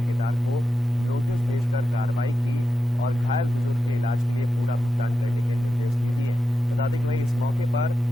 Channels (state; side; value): normal; both; correlation 0.90